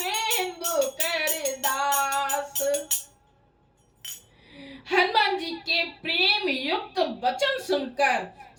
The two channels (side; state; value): both; identical; correlation 1.00